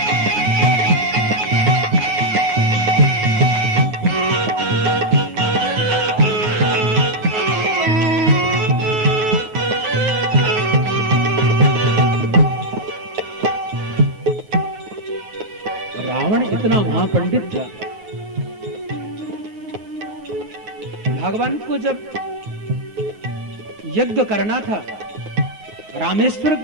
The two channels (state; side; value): late; left; 9.6 ms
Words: इतना महापंडित था, भगवान को जब यज्ञ करना था, रामेश्वर